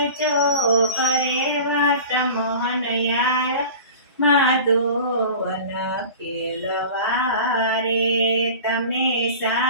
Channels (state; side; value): inverted; both; correlation -0.37